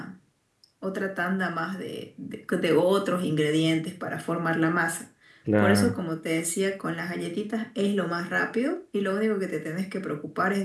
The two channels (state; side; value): identical; both; correlation 1.00